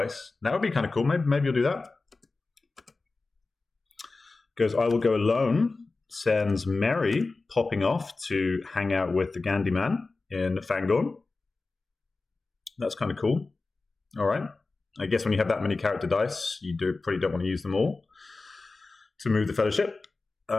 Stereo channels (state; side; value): quieter; right; 3.7 dB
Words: That would be kind of cool. Maybe you'll do that. Goes, I will go alone. Sends Merry popping off to hang out with the Gandhi Man in Fangorn. That's kind of cool. All right. I guess when you have that many character dice, you probably don't want to use them all. to move the Fellowship.